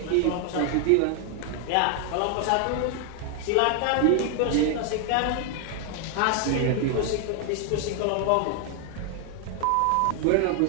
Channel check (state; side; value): different; both; correlation 0.00